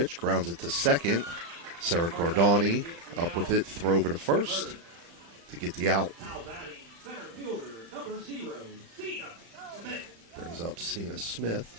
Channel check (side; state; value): left; late; 35 ms